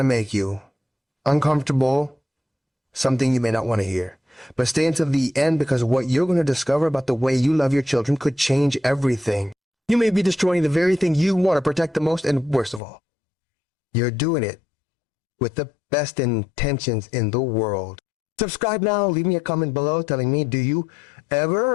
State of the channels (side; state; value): right; drops out; at 12.8 s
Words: make you uncomfortable, something you may not want to hear. But stay until the end, because what you're going to discover about the way you love your children could change everything. You may be destroying the very thing you want to protect the most, and worst of all, you're doing it with the best intentions in the world. Subscribe now. Leave me a comment below telling me, do you